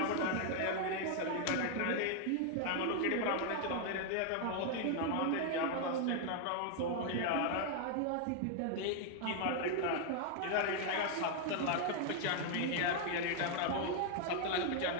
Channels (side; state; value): both; different; correlation 0.00